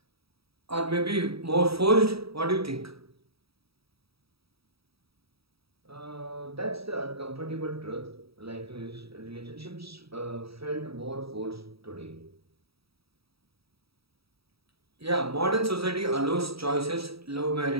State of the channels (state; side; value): late; left; 0.77 ms